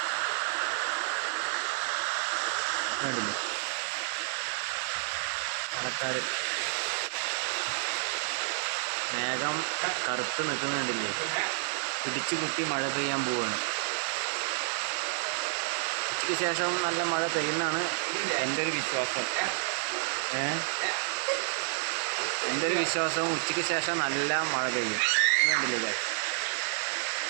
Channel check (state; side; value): silent; left; 58 dB below the other